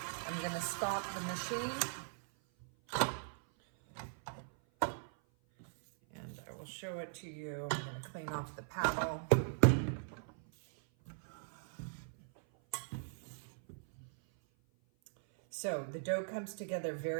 I'm going to stop the machine. And I will show it to you. I'm going to clean off the paddle. So the dough comes together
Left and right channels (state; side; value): silent; left; 51 dB below the other